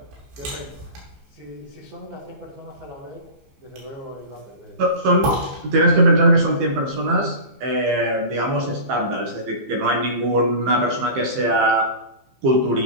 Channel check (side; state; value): left; late; 15 ms